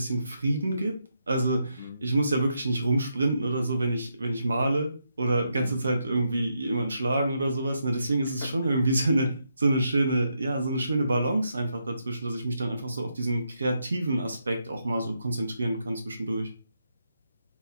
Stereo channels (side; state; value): both; inverted; correlation -0.81